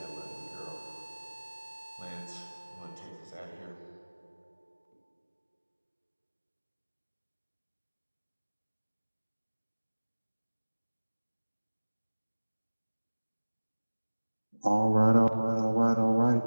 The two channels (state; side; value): inverted; both; correlation -1.00